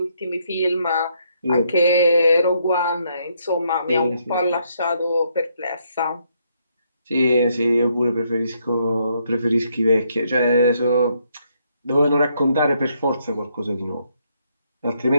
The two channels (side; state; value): both; inverted; correlation -0.74